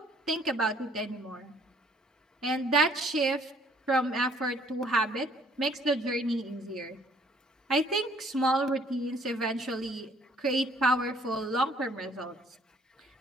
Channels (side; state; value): both; normal; correlation 0.61